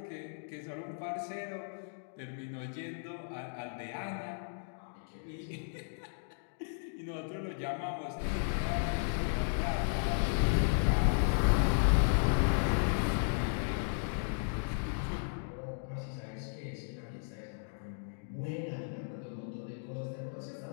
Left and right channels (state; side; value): silent; right; digital silence